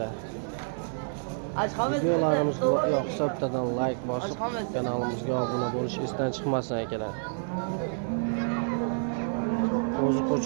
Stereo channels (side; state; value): left; silent; 59 dB below the other